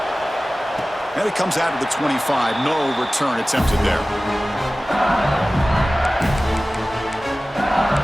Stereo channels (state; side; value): normal; both; correlation 0.97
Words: And it comes out of the 25. No return attempted there.